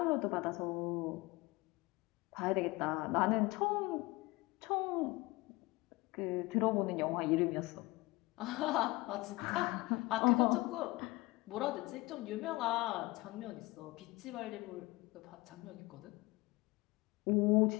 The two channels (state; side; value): quieter; right; 22.0 dB